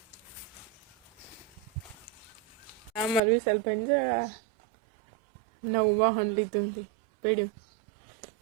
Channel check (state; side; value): drops out; left; at 3.2 s